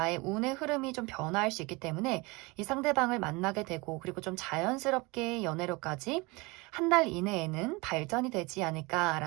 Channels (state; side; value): quieter; left; 25.2 dB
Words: 운의 흐름이 좀 변화할 수 있기 때문에 이 상대방을 만나게 되고, 그리고 좀 자연스럽게 연애로까지 한 달 이내에는 발전이 되지